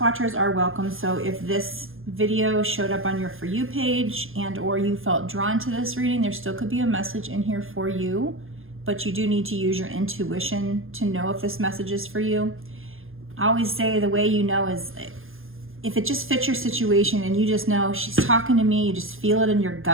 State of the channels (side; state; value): left; late; 0.60 ms